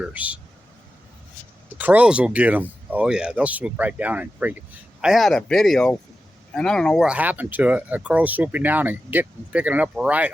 The crows will get them. Oh yeah, they'll swoop right down and freak it. I had a video, and I don't know what happened to it. A crow swooping down and picking it up right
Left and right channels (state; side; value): normal; both; correlation 0.92